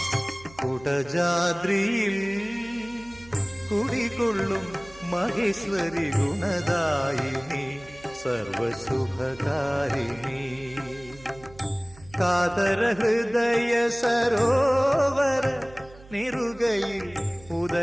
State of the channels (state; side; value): noise; right; hum, 22 dB below the sound